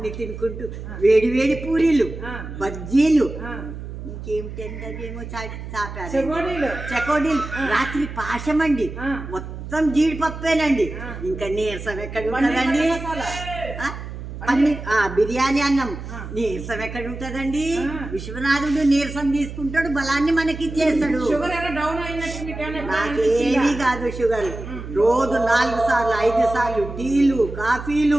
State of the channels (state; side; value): noise; right; hum, 10 dB below the sound